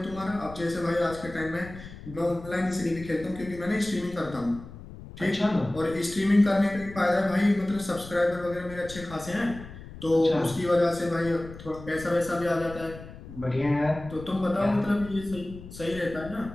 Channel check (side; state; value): left; noise; rumble, 15 dB below the sound